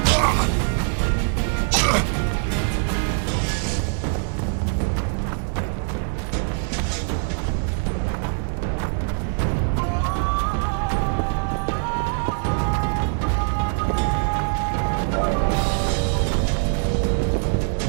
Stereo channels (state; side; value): silent; left; 58 dB below the other